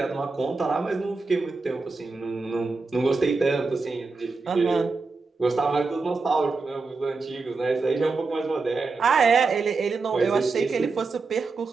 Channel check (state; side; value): quieter; left; 4.1 dB